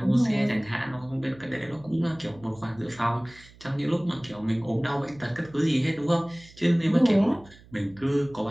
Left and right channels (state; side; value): noise; right; hum, 24 dB below the sound